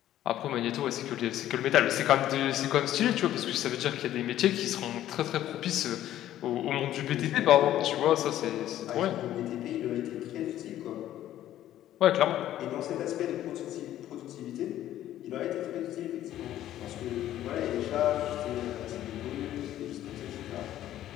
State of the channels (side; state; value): right; quieter; 12.7 dB